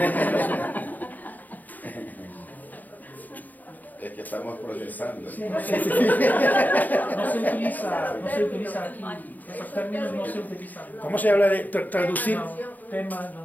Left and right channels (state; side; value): late; right; 0.085 ms